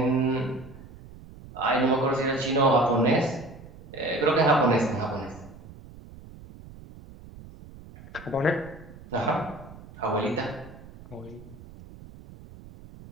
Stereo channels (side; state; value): right; noise; rumble, 18 dB below the sound